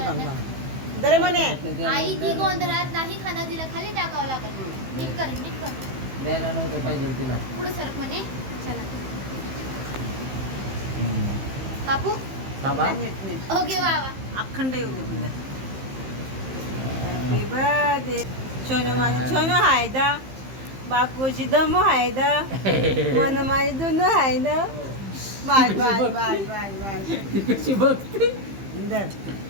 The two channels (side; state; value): left; late; 15 ms